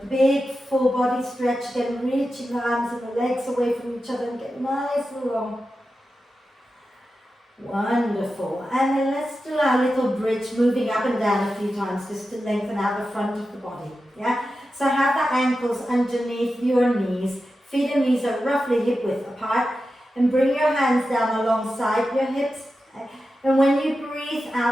big full body stretch again, reaching the arms and the legs away from each other and get nice and long. Wonderful. And then let's do our little bridge, moving up and down a few times just to lengthen out the front of the body. Yeah? So have the ankles underneath your knees. Feet and knees are roughly hip width apart. And bring your hands down alongside your hips. Okay? And when you breathe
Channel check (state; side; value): normal; both; correlation 0.91